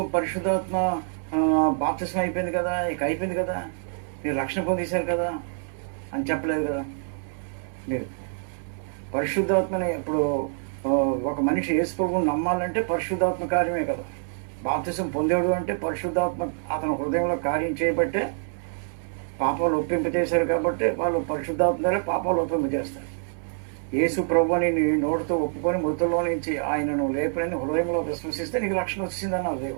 పరిశుద్ధాత్మ బాప్తిసం అయిపోయింది కదా, ఇక అయిపోయింది కదా, మీరు రక్షణ పొందేశారు కదా అని చెప్పలేదు కదా. మీరు పరిశుద్ధాత్మని ఇప్పుడు ఒక మనిషి యేసు ప్రభువుని నమ్మాలంటే పరిశుద్ధాత్మ కార్యమే కదా. బాప్తిసం పొందాడు అంటే పరిశుద్ధాత్మ అతని హృదయంలో కార్యం చేయబట్టే పాపాలు ఒప్పింపజేశారు. కాబట్టి వాళ్ళు పరిశుద్ధాత్మ ద్వారా పాపాలు ఒప్పింపజేస్తారు. యేసు ప్రభువుని నీ నోటితో ఒప్పుకొని మృతుల్లో నుంచి ఆయనను లేపనని హృదయంలో విశ్వసిస్తే నీకు రక్షణ వచ్చిందన్నారు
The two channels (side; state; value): left; silent; 61 dB below the other